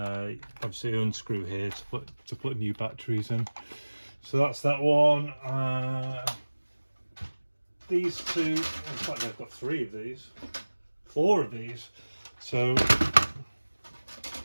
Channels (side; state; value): both; inverted; correlation -1.00